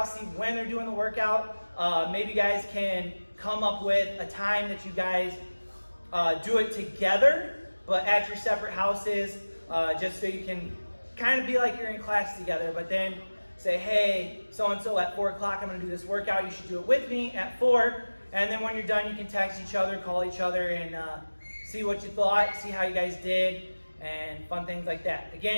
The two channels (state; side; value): inverted; both; correlation -1.00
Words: see when they're doing the workout. Maybe you guys can come up with a time that you guys do it together, but at your separate houses, just so you can kind of be like you're in class together, but then say, hey, so-and-so at 4 o'clock, I'm gonna do this workout, you should do it with me at 4. And then when you're done, you can text each other, call each other, and see what you thought, see how you guys did, and fun things like that.